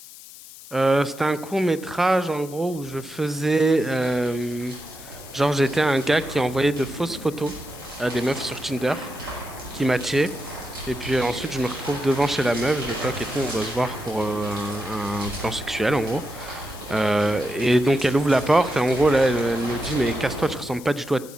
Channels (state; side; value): noise; left; hiss, 17 dB below the sound